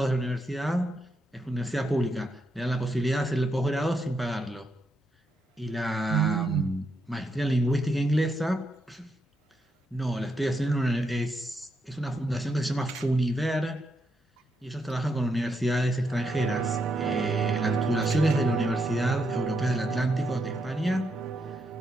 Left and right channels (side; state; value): both; normal; correlation 0.80